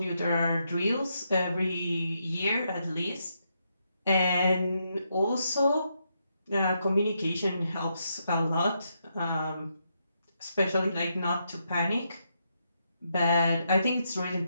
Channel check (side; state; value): both; inverted; correlation -0.80